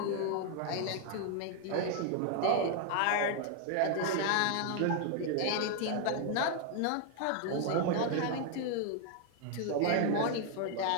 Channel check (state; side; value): different; both; correlation 0.00